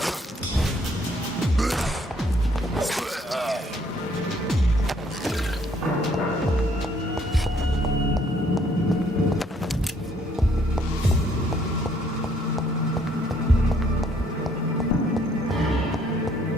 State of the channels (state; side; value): normal; both; correlation 0.65